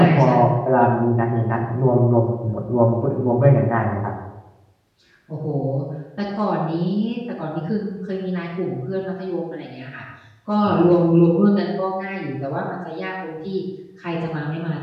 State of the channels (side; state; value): both; identical; correlation 1.00